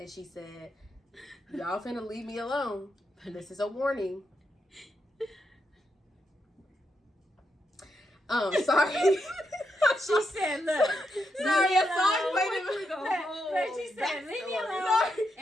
she said, y'all finna leave me alone. This is a warning. Sorry. She said, look. Sorry, a song played She said, leave me alone.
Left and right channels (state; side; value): normal; both; correlation 0.83